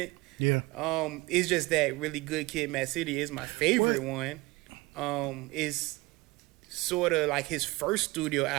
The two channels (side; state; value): left; quieter; 22.4 dB